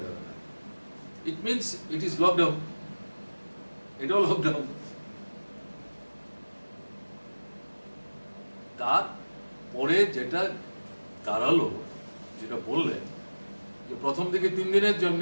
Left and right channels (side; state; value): both; inverted; correlation -1.00